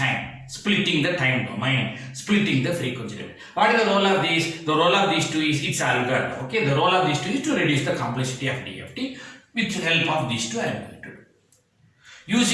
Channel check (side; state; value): both; identical; correlation 1.00